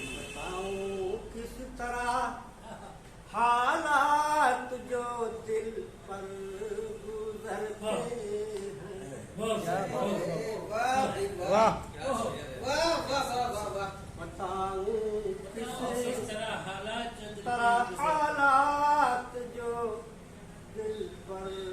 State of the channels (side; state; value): both; identical; correlation 1.00